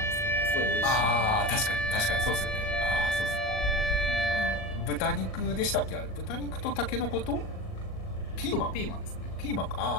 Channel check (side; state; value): right; late; 38 ms